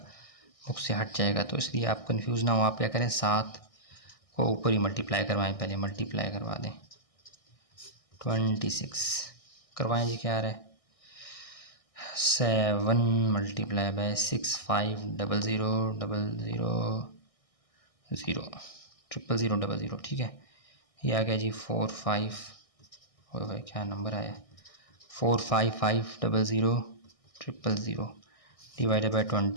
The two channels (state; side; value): late; right; 1.6 ms